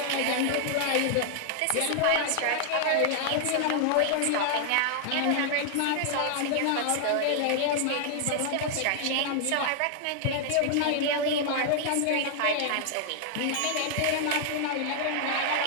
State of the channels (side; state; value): both; different; correlation 0.00